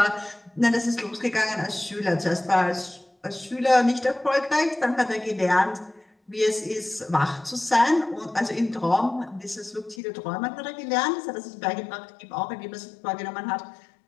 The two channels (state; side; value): drops out; right; at 10.0 s